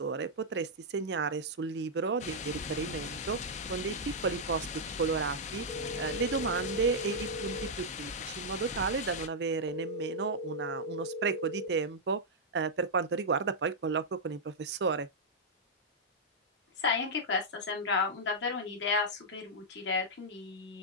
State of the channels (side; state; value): both; normal; correlation -0.06